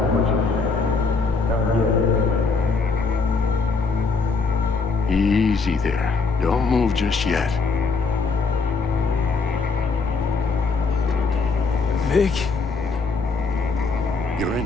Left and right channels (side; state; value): right; quieter; 4.4 dB